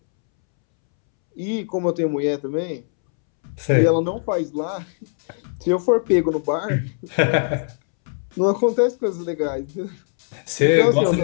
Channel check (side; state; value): right; silent; 65 dB below the other